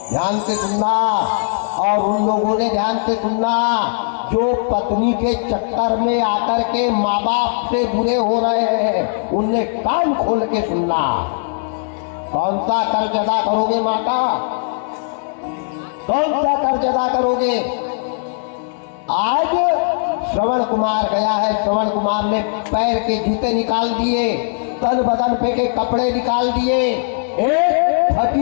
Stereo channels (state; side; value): silent; right; digital silence